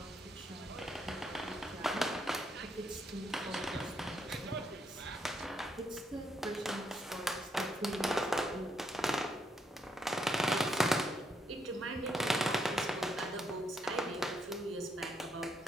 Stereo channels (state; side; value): normal; both; correlation 0.76